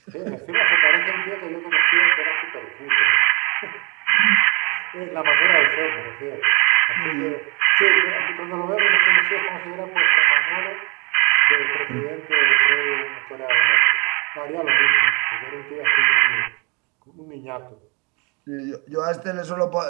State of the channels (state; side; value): quieter; left; 30.6 dB